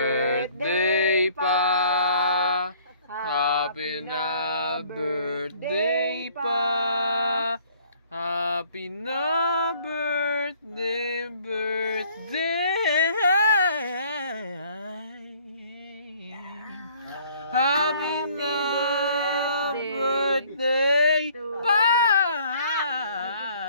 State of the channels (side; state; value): both; inverted; correlation -0.58